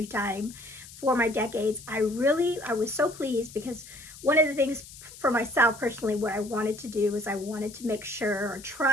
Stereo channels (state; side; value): noise; left; hiss, 17 dB below the sound